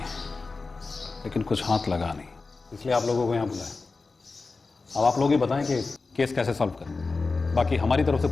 लेकिन कुछ हाथ लगा नहीं, इसलिए आप लोगों को यहाँ बुलाया। अब आप लोग ही बताएं कि केस कैसे सॉल्व करें। बाकी हमारी तरफ से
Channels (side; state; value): right; quieter; 4.0 dB